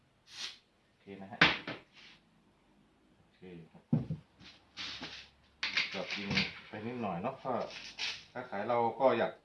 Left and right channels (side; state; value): both; identical; correlation 1.00